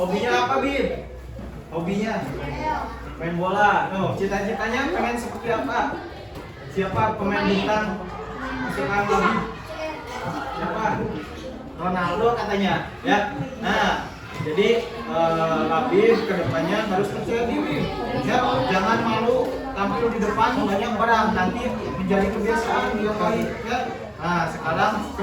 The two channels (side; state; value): both; identical; correlation 1.00